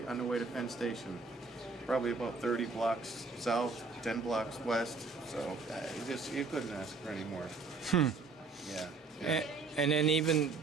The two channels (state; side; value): quieter; left; 4.1 dB